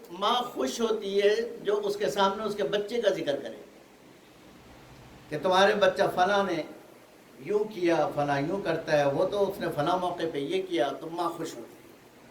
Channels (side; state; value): both; identical; correlation 1.00